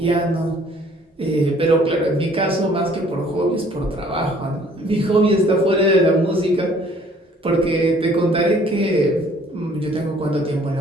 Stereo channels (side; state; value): both; normal; correlation 0.57